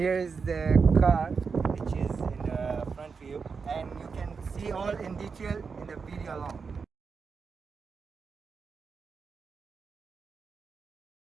is the car, which is in the front view, and you can see all in detail in the video along.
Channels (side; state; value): left; quieter; 5.3 dB